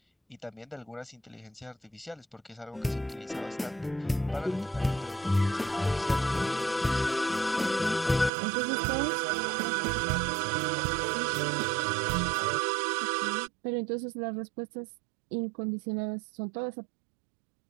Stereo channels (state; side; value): drops out; left; at 8.3 s